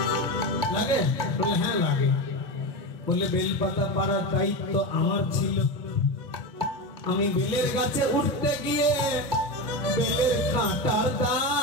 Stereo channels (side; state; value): both; normal; correlation 0.19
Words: লাগে বলে হ্যাঁ লাগে বলে বেলপাতা পাড়ার দায়িত্ব আমার ছিল আমি বেলের গাছে উঠতে গিয়ে বেলের কাঁটার